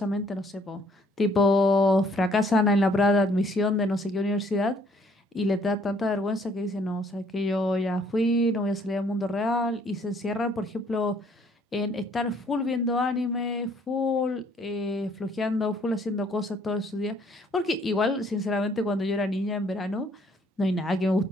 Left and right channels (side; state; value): both; normal; correlation 0.62